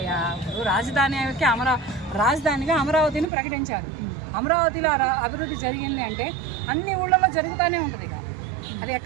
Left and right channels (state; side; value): drops out; left; at 3.2 s